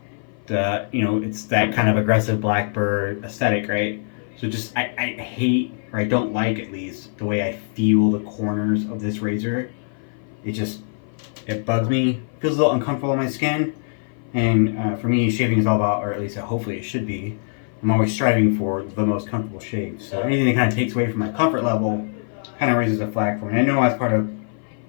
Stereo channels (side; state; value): right; silent; 56 dB below the other